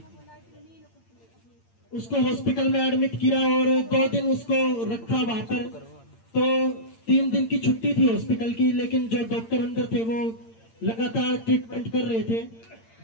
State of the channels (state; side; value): late; right; 8.8 ms